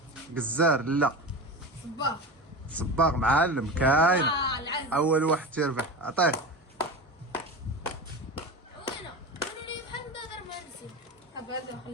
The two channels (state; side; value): normal; both; correlation 0.26